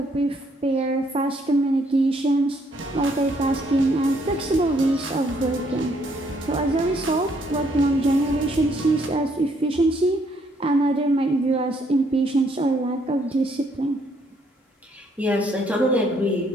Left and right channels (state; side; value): normal; both; correlation 0.69